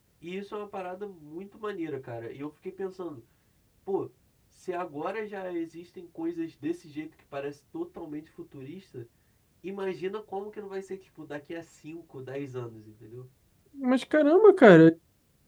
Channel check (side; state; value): both; identical; correlation 1.00